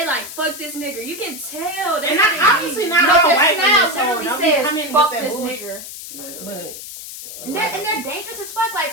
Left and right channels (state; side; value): noise; left; hiss, 11 dB below the sound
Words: like fuck this nigga. You can tell. That's And how they obviously be. not No, all their white smile women. So literally don't be says coming "fuck with that this bullshit. nigger," But and they're dangerous as fuck. Like,